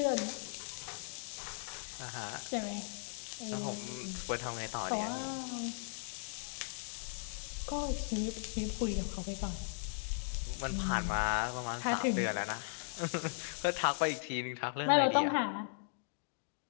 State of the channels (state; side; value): silent; right; digital silence